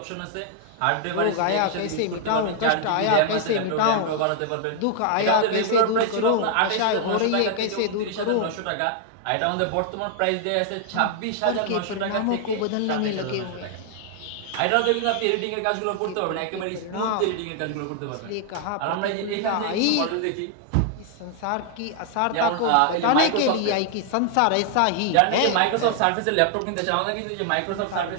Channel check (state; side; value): different; both; correlation 0.00